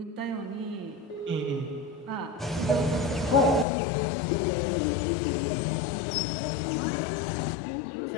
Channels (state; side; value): drops out; right; at 3.7 s